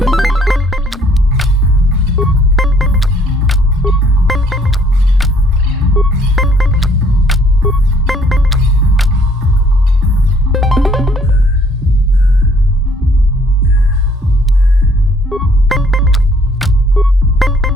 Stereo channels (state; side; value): normal; both; correlation 0.62